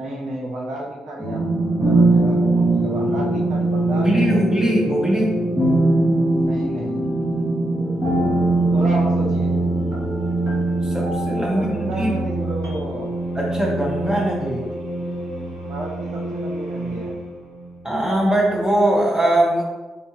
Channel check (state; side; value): normal; both; correlation 0.84